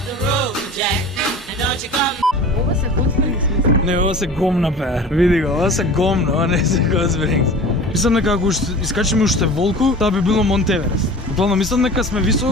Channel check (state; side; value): normal; both; correlation 0.38